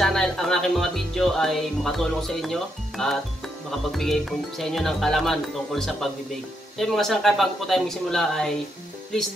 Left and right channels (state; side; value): normal; both; correlation 0.79